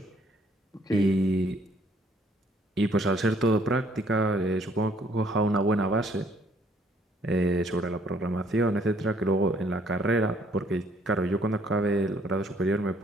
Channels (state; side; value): normal; both; correlation 0.64